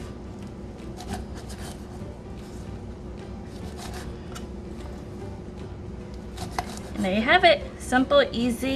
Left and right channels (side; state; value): both; identical; correlation 1.00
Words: And there you have it. Simple,